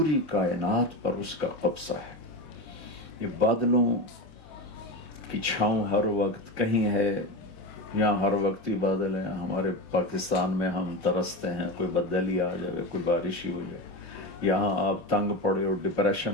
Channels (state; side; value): late; right; 27 ms